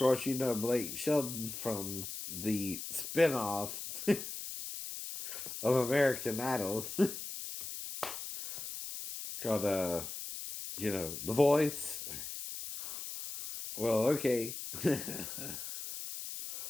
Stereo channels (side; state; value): left; noise; hiss, 7 dB below the sound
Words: you know Blake Shelton from the spinoff of American Idol called, The Voice. Well, okay.